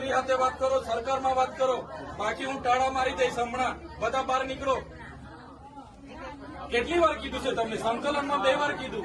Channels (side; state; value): both; identical; correlation 1.00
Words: સાથે વાત કરો, સરકારમાં વાત કરો. બાકી હું ટાળા મારી દઈશ હમણાં. બધા બહાર નીકળો. કેટલી વાર કીધું છે તમને? સંકલનમાં 2 વાર કીધું,